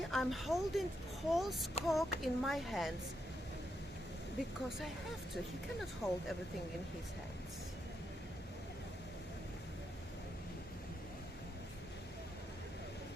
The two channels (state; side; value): normal; both; correlation 0.81